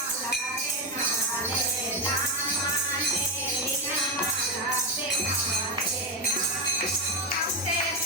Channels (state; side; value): normal; both; correlation 0.10